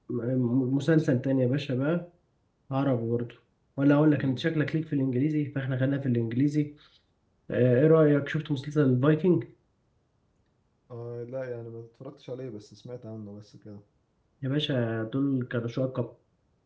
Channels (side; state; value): both; identical; correlation 1.00